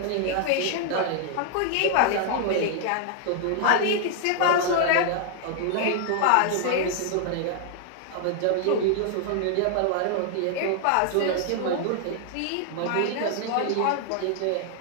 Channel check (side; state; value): both; different; correlation 0.00